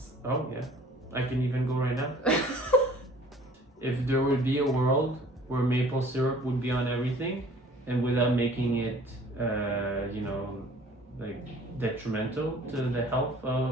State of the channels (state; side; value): normal; both; correlation 0.51